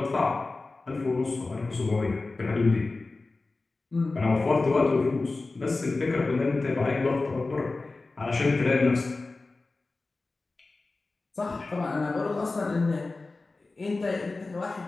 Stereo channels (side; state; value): right; quieter; 3.5 dB